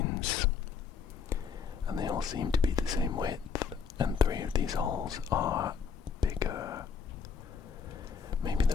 and they all seem to be the same width, and 3 of these holes are bigger. Maybe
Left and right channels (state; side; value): quieter; right; 6.2 dB